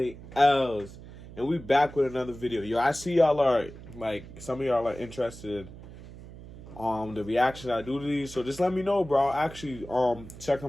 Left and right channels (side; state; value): right; noise; hum, 16 dB below the sound